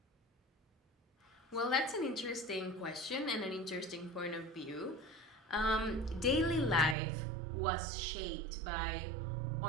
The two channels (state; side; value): drops out; left; at 7.0 s